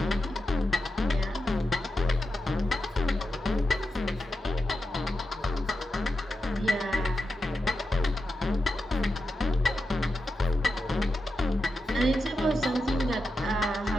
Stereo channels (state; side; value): normal; both; correlation 0.89